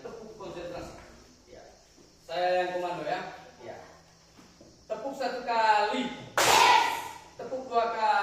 tepuk konsentrasi. Ya. Saya yang komando ya. Ya. Tepuk 1 kali. Tepuk 2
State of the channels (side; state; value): both; identical; correlation 1.00